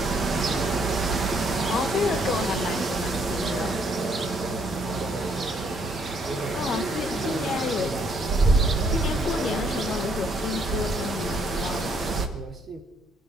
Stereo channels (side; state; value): both; normal; correlation 0.69